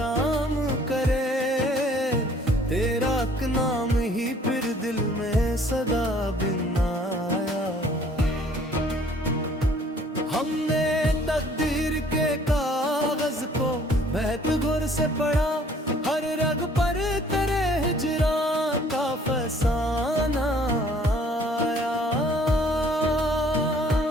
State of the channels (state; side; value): normal; both; correlation 0.57